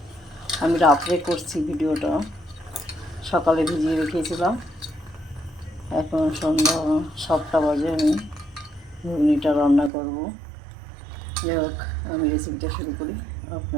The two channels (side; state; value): left; drops out; at 9.9 s